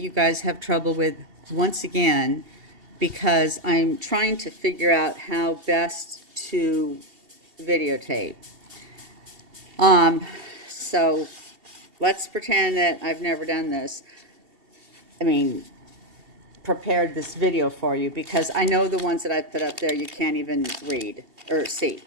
guys have trouble with once again because I'm trying to figure out how best to videotape. So let's pretend that I've never done this. I mean, prepared this video for you because I know the ones that I put up there you can't even read or see.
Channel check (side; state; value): left; late; 2.7 ms